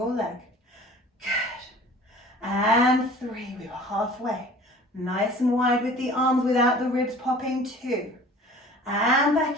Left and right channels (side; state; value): both; normal; correlation 0.46